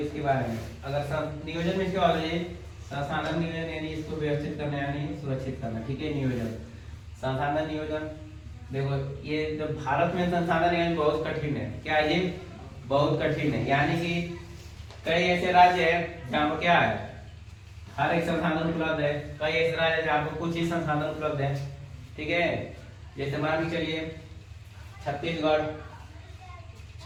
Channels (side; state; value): both; identical; correlation 1.00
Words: बारे में अगर नियोजन में क्या होता है, संसाधन नियोजन यानी इसको व्यवस्थित करना यानी सुरक्षित करना। ठीक है, नियोजन संसाधन नियोजन। देखो ये जो भारत में संसाधन नियोजन बहुत कठिन है। क्या है ये? बहुत कठिन है, यानी कि कई ऐसे राज्य है जहाँ पर क्या है हर एक संसाधन उपलब्ध है, कई ऐसे राज्य है जहाँ पर कुछ ही संसाधन उपलब्ध है। ठीक है, जैसे मान के चलिए छत्तीसगढ़,